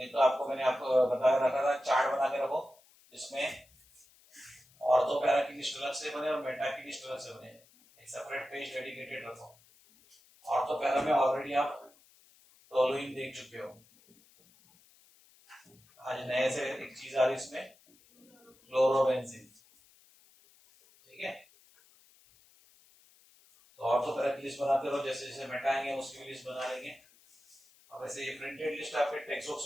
तो आपको मैंने आपको बताया रखा था, चार्ट बना के रखो जिसमें ऑर्थो पैरा की लिस्ट अलग से बने और मेटा की लिस्ट अलग से बने, एक सेपरेट पेज डेडिकेटेड रखो। ऑर्थो पैरा में ऑलरेडी आप टोलुइन देख चुके हो, आज नए से एक चीज आ रही इसमें, क्लोरोबेंजीन, ठीक है। तो ऑर्थो पैरा की लिस्ट बनाते रहो, जैसे जैसे मेटाएंगे उसकी भी लिस्ट बना लेंगे। अब ऐसे ये प्रिंटेड लिस्ट आपके टेक्स्ट बुक्स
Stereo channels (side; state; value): left; noise; hiss, 29 dB below the sound